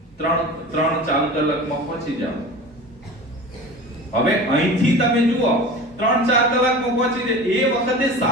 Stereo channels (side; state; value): both; normal; correlation 0.35